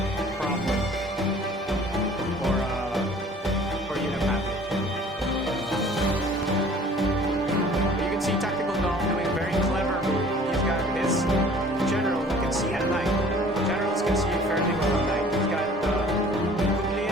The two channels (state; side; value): normal; both; correlation 0.50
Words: problem for unit pathing. You can see Tactical Doll doing a very clever move. He's got his general who can see at night. Generals can see fairly well at night. He's got